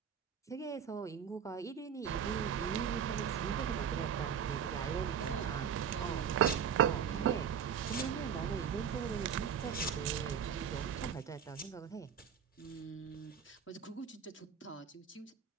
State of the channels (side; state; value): left; quieter; 7.6 dB